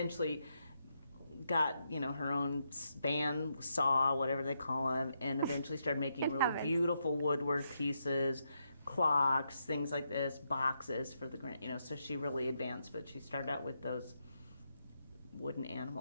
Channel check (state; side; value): inverted; both; correlation -0.82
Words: got, you know, her own band saw, whatever they call them, and eventually started making really beautiful woodwork pieces, clocks, things like this, boxes for the grand, you know, so she really advanced, but she started out with those wooden